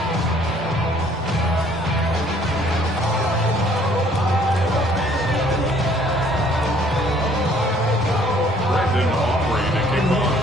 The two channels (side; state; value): both; normal; correlation 0.59